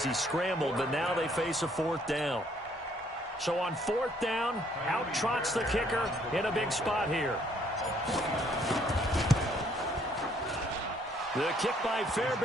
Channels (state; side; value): normal; both; correlation 0.65